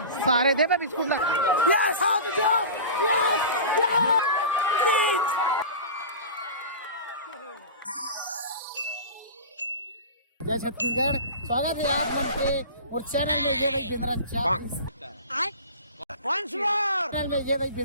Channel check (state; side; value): inverted; both; correlation -0.33